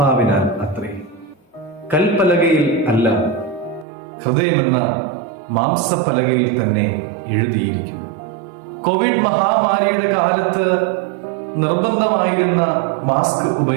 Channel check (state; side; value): drops out; left; at 3.9 s